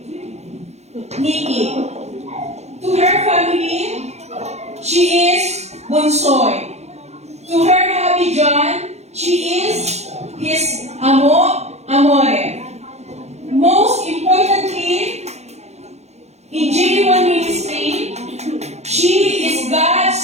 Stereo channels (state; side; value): late; left; 0.32 ms